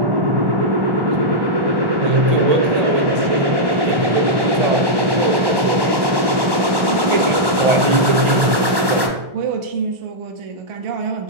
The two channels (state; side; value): late; left; 1.1 ms